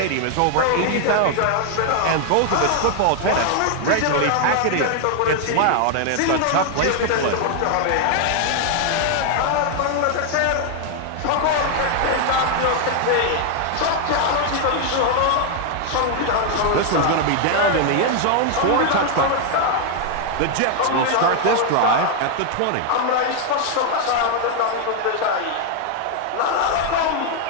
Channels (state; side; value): different; both; correlation 0.00